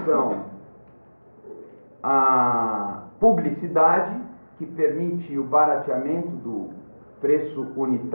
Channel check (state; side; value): inverted; both; correlation -1.00